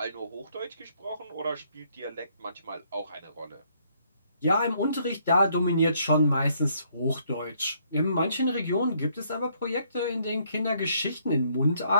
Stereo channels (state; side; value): inverted; both; correlation -0.69